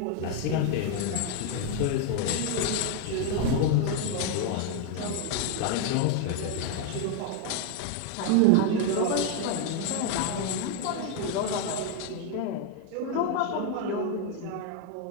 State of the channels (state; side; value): different; both; correlation 0.01